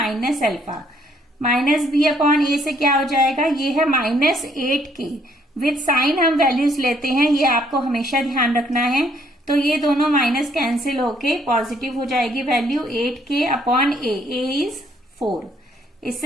alpha. Minus B upon a से क्या हो जाएगा, ये है माइनस 8k। विद साइन हम वैल्यूज लेते हैं, ये आपको हमेशा ध्यान रखना है। तो ये दोनों माइनस कैंसिल होके पॉजिटिव हो जाएगी value 8k upon A is 4।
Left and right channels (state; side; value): normal; both; correlation 0.67